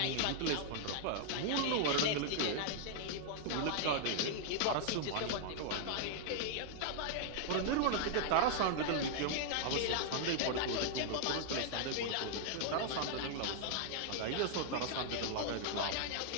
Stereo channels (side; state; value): both; different; correlation -0.01